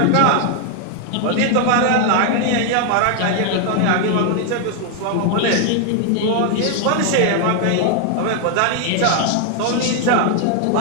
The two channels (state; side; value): different; both; correlation 0.00